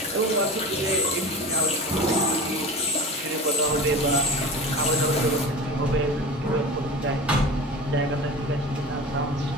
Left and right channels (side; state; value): both; normal; correlation 0.34